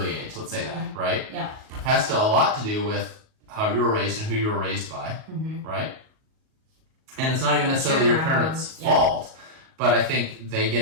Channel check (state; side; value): late; left; 38 ms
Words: age, let's say that, right? Yeah. Has a lot to do with how you were raised and who you were raised by, right? And it's not even necessarily your parents' fault. But I think they